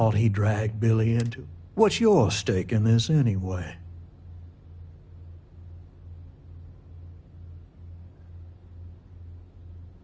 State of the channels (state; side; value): identical; both; correlation 1.00